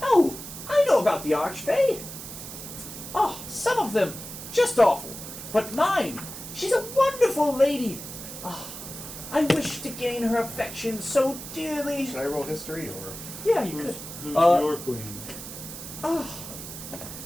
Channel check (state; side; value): noise; right; hiss, 11 dB below the sound